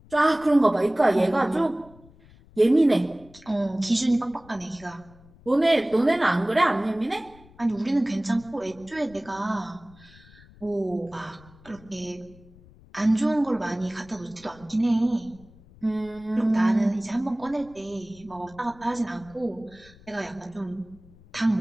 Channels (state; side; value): noise; left; rumble, 24 dB below the sound